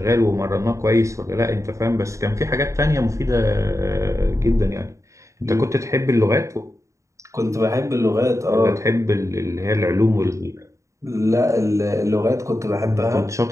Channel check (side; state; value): left; late; 0.15 ms